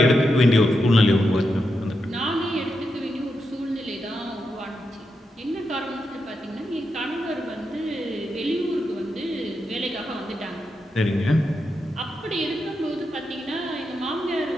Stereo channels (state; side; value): normal; both; correlation 0.86